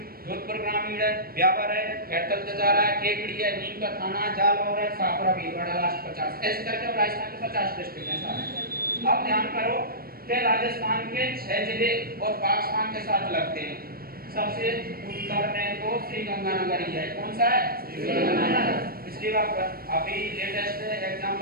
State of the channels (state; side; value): late; left; 0.44 ms